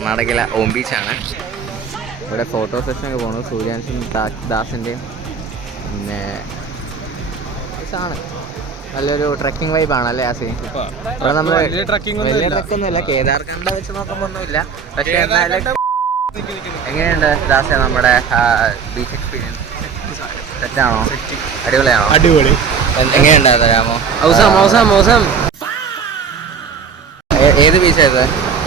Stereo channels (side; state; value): left; quieter; 6.1 dB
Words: ഓം ബീച്ചാണ്. ഇവിടെ ഫോട്ടോ സെഷനൊക്കെ പോകണം. സൂര്യാൻസും ദാസിൻ്റെയും പിന്നെ ആണ്. നല്ലൊരു ട്രക്കിംഗ് വൈബാണ് അല്ലേ ആസി? ഇവിടെ നമ്മൾ വലിയ ട്രക്കൊന്നുമില്ല, കേദാർഖണ്ഡ് വെച്ച് നോക്കുമ്പോൾ ഒന്നുമില്ല. പക്ഷേ എന്നാലും എങ്ങനെയുണ്ട് ദാസ നമ്മുടെ ബീച്ച് എക്സ്പീരിയൻസ്? സെറ്റാണോ? അടിപൊളിയാണോ? അടിപൊളി. എങ്ങനെയുണ്ട് തരാമോ? ഏത് ബീച്ചായത്?